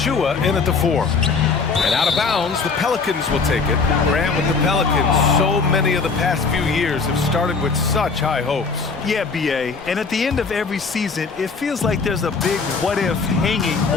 in at the 4. And out of bounds, the Pelicans will take it. Grant, with the Pelicans, so many of the past few years have started with such high hopes. Yeah, BA, and at the end of every season, it feels like there's a big what-if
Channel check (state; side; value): quieter; right; 4.7 dB